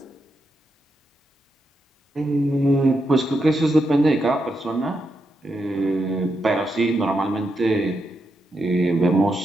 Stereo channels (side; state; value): both; normal; correlation 0.84